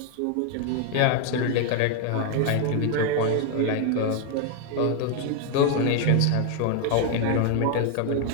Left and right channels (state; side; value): different; both; correlation 0.01